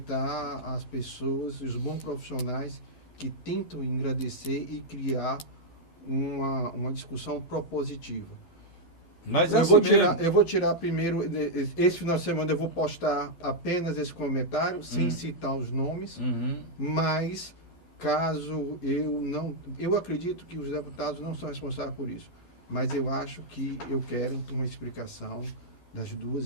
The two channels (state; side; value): late; right; 12 ms